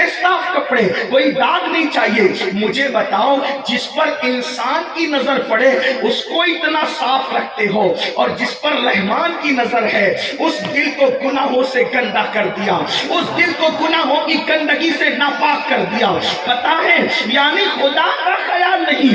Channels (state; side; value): identical; both; correlation 1.00